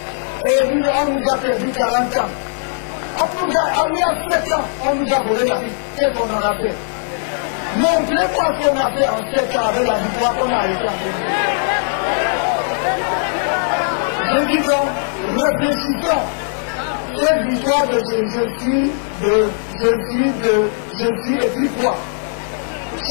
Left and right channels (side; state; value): right; silent; 63 dB below the other